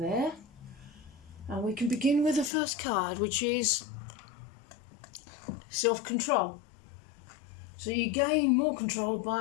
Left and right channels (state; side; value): drops out; right; at 2.5 s